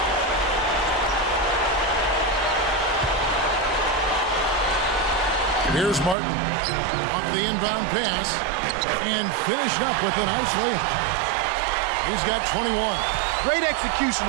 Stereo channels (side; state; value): left; drops out; at 6.2 s